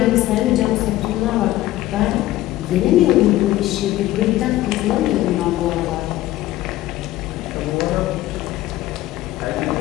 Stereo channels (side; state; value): right; quieter; 15.6 dB